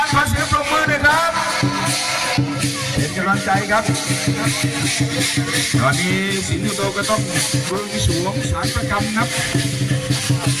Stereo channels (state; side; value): identical; both; correlation 1.00